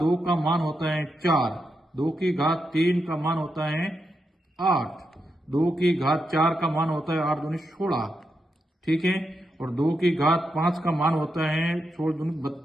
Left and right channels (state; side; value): normal; both; correlation 0.85